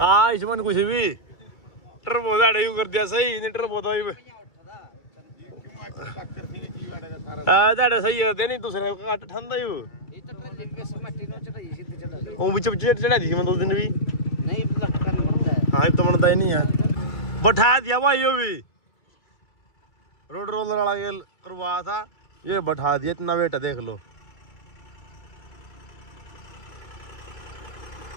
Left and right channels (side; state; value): right; late; 2.3 ms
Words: इसमें कुछ भी टर्बो दाड़े यू कर दिया सही, नहीं टर्बो तो दाड़े सही करते नहीं, दूसरे को काट ठंडा यू वो बिच बिच चढ़ा दी मैं 2 दिन भी नहीं। हाँ तो बनता ही नहीं है, बैठा दिया भाई यो भी, रोड रोलर वाला गेल करवा था, ये बैठा दिया, इतना वेट है देख लो।